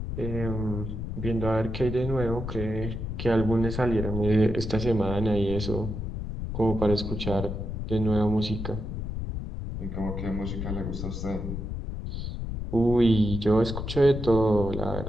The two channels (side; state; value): left; noise; rumble, 5 dB below the sound